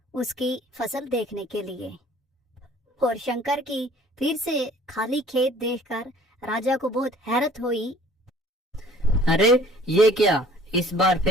उसकी फसल देखने के लिए, और शंकर की फिर से खाली खेत देखकर राजा को बहुत हैरत हुई। अरे ये क्या, इस बार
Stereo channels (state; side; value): normal; both; correlation 0.53